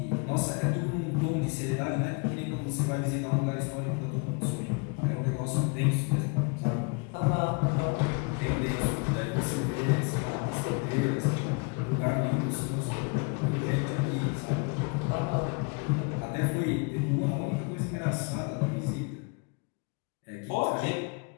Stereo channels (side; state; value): right; quieter; 31.6 dB